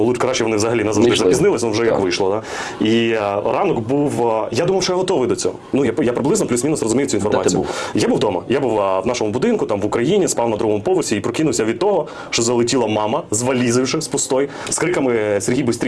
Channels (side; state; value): both; identical; correlation 1.00